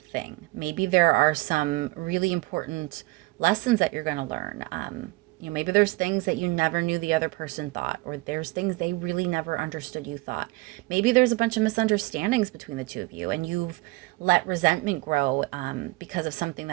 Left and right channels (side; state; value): left; quieter; 22.2 dB